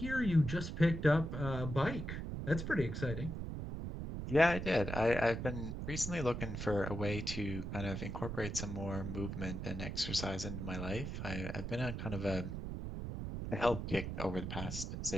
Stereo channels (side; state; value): right; noise; rumble, 5 dB below the sound